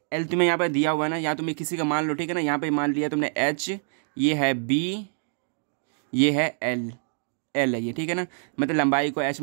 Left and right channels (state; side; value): silent; left; digital silence